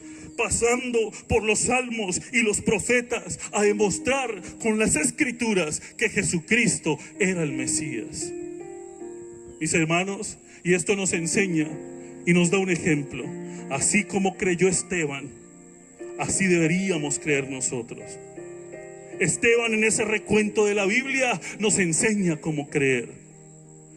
pasando por los salmos y los profetas, a demostrar con las Escrituras que Jesucristo era el Mesías. Mis hermanos, y esto nos enseña y nos da un ejemplo. Así como creyó Esteban, así deberíamos creer nosotros. Esteban, en ese recuento de la Biblia, nos enseña cómo creer,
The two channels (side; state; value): both; identical; correlation 1.00